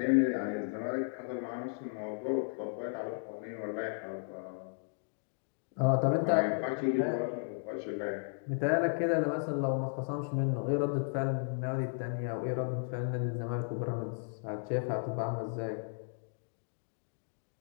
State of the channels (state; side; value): silent; right; digital silence